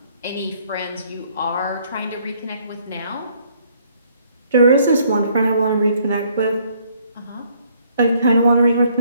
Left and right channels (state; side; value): inverted; both; correlation -0.65